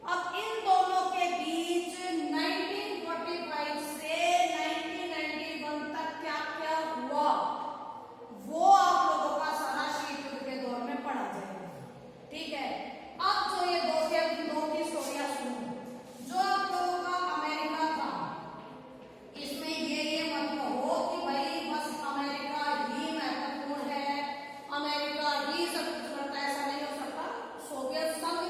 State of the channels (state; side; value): identical; both; correlation 1.00